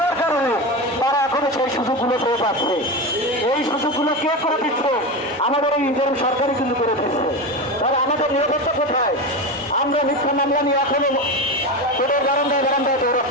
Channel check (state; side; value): normal; both; correlation 0.20